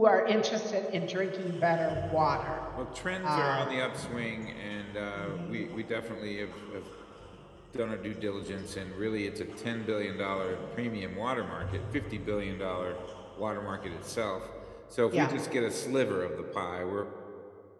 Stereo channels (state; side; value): identical; both; correlation 1.00